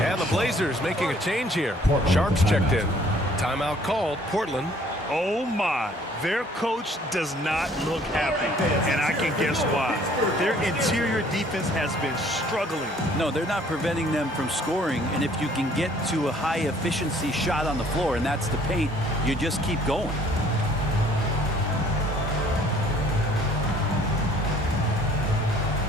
And the Blazers making a change here. Sharp's checked in. Timeout called. Portland. Oh my, their coach does not look happy, and I can guess why. Their interior defense has been struggling. No, they're not preventing them from scoring, and if you can get to a high efficiency shot on the floor, and that's the paint, you just keep going.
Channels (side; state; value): both; normal; correlation 0.58